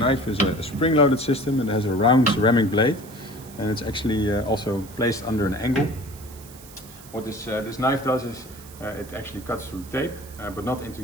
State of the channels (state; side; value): noise; right; hiss, 20 dB below the sound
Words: is a spring-loaded system and it has a round ceramic blade, and it's actually also placed under an angle. What this knife does is it actually cuts through tape, but not into